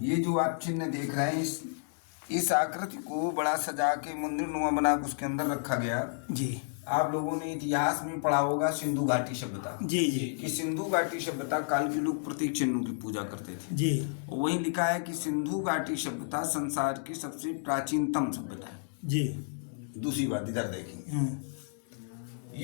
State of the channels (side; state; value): right; silent; digital silence